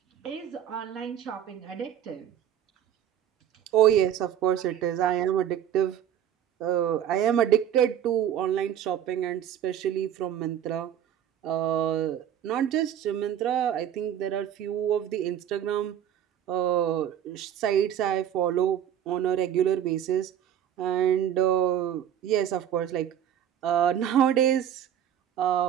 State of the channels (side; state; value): left; quieter; 10.1 dB